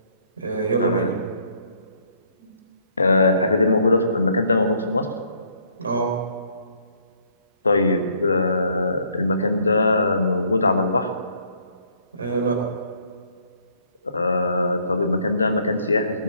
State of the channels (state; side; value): inverted; both; correlation -0.66